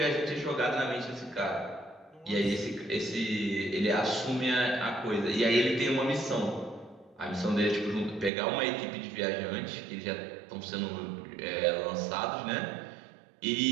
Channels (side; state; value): left; drops out; at 8.3 s